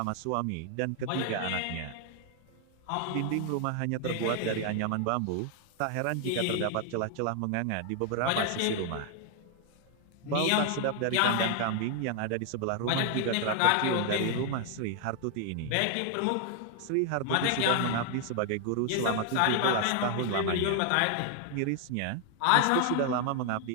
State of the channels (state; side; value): different; both; correlation 0.00